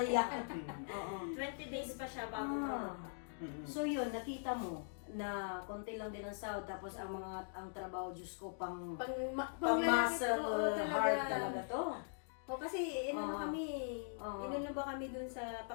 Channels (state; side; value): silent; right; digital silence